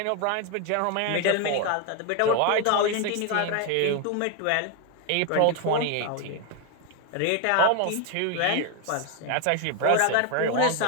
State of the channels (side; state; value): both; different; correlation 0.01